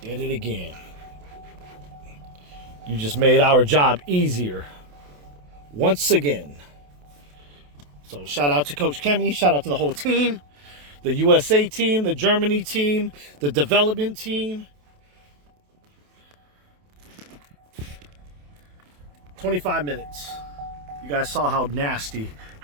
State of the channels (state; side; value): late; left; 28 ms